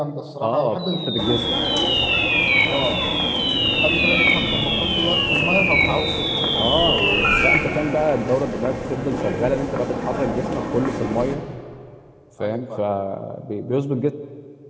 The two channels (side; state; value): both; identical; correlation 1.00